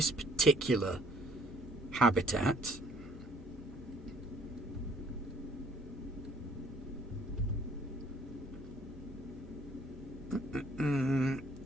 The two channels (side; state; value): both; normal; correlation 0.60